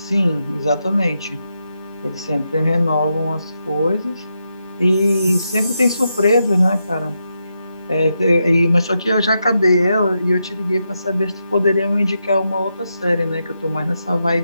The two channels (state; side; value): inverted; both; correlation -0.85